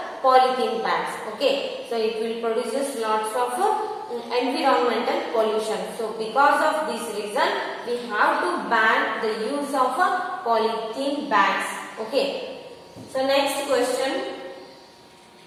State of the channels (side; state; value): both; identical; correlation 1.00